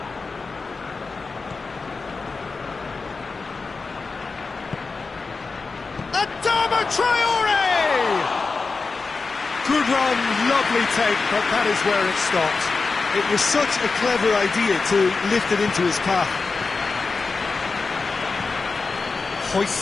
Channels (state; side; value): quieter; right; 4.3 dB